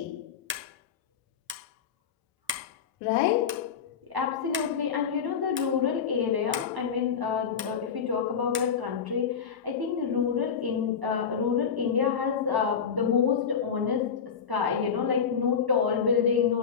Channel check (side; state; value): right; quieter; 7.0 dB